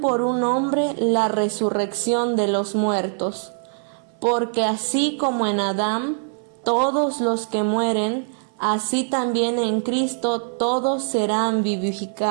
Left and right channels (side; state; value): left; silent; 58 dB below the other